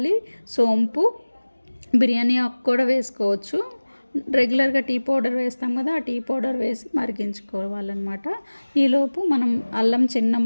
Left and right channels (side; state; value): both; inverted; correlation -1.00